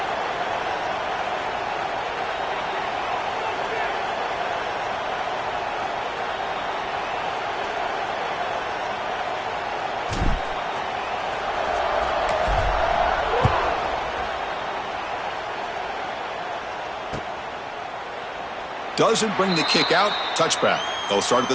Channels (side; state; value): both; identical; correlation 1.00